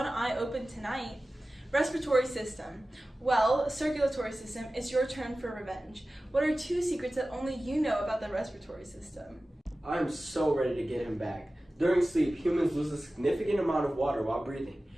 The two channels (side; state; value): both; normal; correlation 0.96